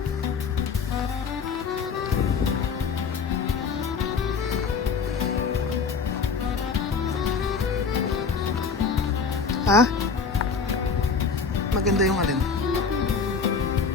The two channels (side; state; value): right; quieter; 5.4 dB